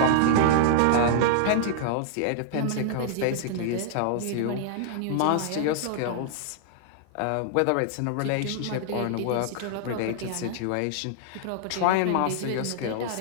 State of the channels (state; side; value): different; both; correlation -0.01